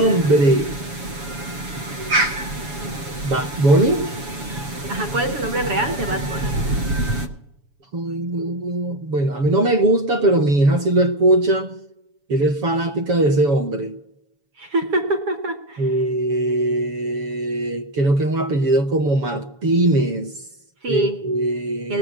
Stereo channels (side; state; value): left; late; 7.1 ms